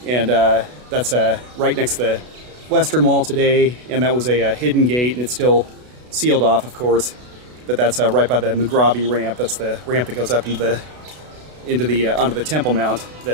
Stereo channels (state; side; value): late; left; 32 ms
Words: And that's right next to the western wall today, and that was a hidden gate, and it's still sealed off, of course. But that's right by the Mughrabi ramp. That's the ramp that goes up onto the Temple Mount